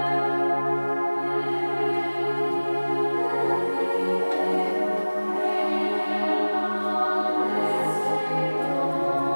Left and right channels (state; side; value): inverted; both; correlation -1.00